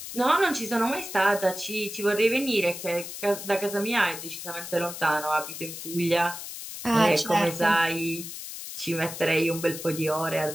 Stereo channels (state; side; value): noise; left; hiss, 9 dB below the sound